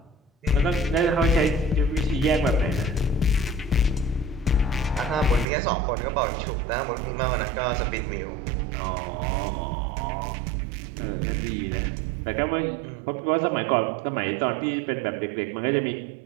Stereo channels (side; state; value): left; drops out; at 5.5 s